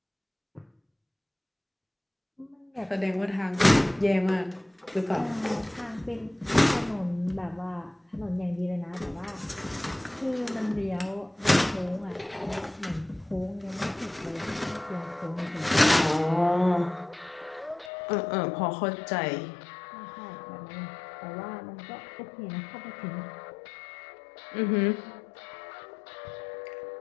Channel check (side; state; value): right; drops out; at 17.9 s